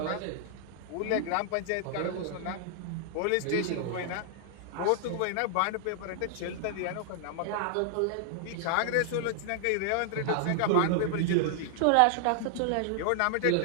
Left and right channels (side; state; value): both; different; correlation -0.01